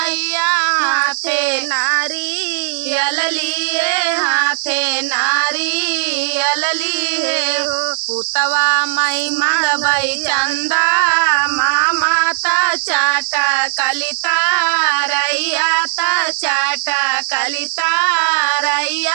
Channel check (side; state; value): left; silent; digital silence